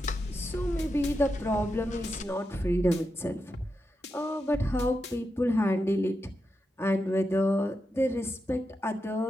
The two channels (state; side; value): normal; both; correlation 0.87